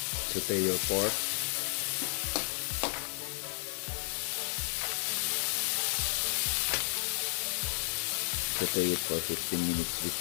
Saute your pork. Saute it for 15 minutes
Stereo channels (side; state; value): right; silent; digital silence